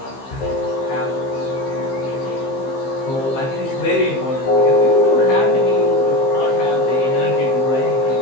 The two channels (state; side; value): late; right; 15 ms